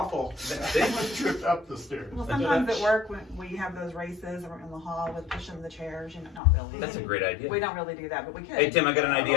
Someone tripped up the stairs. Well, sometimes at work when we have those races or in the hall with pushing the chairs, not really. That's a great idea. We don't really do that, but we could. Hey Tim, I got an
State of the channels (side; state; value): right; drops out; at 6.4 s